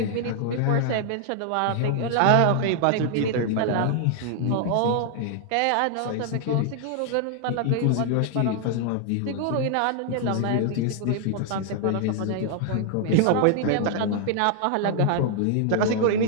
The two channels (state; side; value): different; both; correlation 0.00